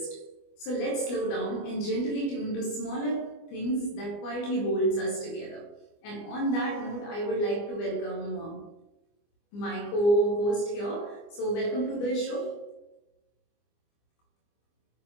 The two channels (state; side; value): late; right; 24 ms